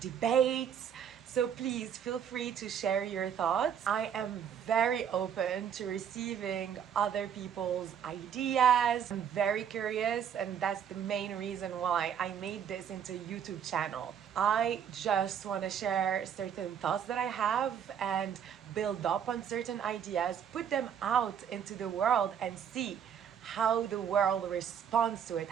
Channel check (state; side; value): quieter; left; 8.5 dB